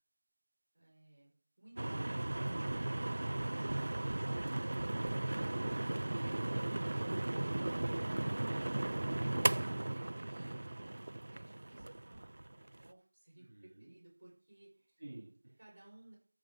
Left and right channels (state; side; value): inverted; both; correlation -1.00